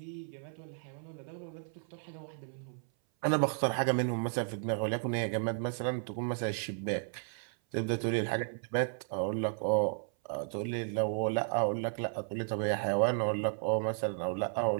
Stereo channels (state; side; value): silent; left; 55 dB below the other